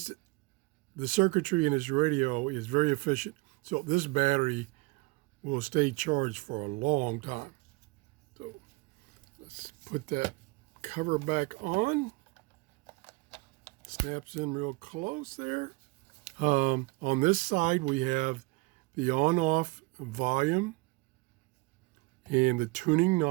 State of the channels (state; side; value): quieter; left; 26.3 dB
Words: circuitry in this radio is very efficient. So this battery will stay charged for a long time. So let's put that cover back on. Snaps in real close there. On this side, we have the on-off volume and the tuning